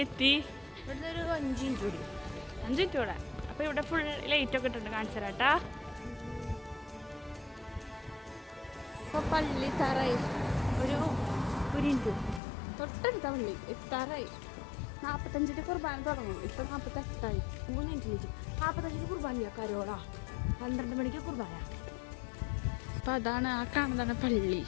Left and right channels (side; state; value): right; drops out; at 12.4 s